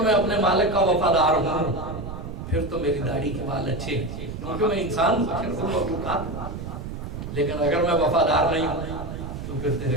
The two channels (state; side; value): noise; right; rumble, 8 dB below the sound